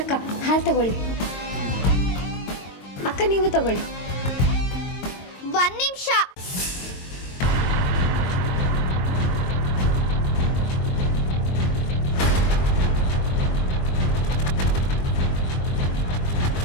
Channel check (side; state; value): right; late; 22 ms